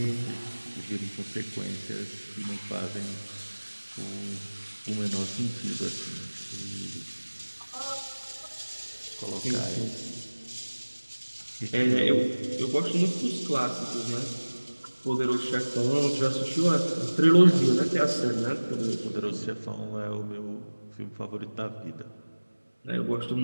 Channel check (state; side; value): inverted; both; correlation -1.00